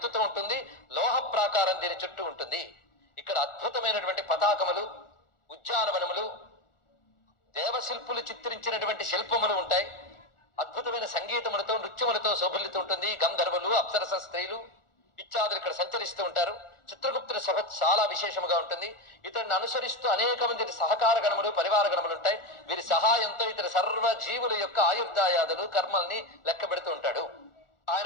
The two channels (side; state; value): right; late; 1.4 ms